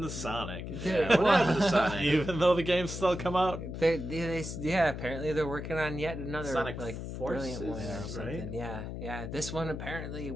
to Sonic? Yeah, what happened to Sonic? Even though the games still come out. Yeah, apparently they're working on yet another Sonic like Forces, brilliant one or right? something. Yeah. This one apparently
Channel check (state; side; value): noise; left; hum, 7 dB below the sound